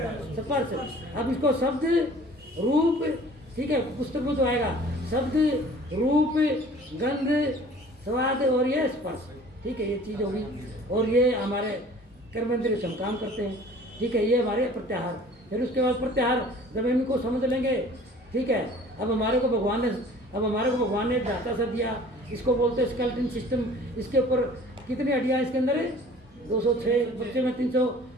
स्पर्श। अब इसको शब्द, रूप, ठीक है, पुस्तक में तो आएगा शब्द, रूप, गंध, स्वाद और ये स्पर्श, ठीक है, ये चीज होगी। और ये हमारे कर्मेंद्रिय से हम काम करते हैं, ठीक है। ये हमारे प्रत्याहार। फिर उसके बाद प्रत्याहार जब इनको समझ लेंगे ठीक है। अब हमारे को भगवान ने एक ढांचा सा दिया, इसको बोलते हैं स्केलेटन सिस्टम। इसके ऊपर कितनी हड्डियाँ इसके अंदर है? 206, बच्चे में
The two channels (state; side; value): normal; both; correlation 0.48